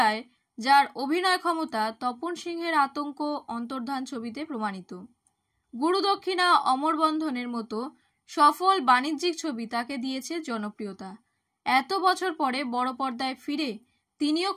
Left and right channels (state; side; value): identical; both; correlation 1.00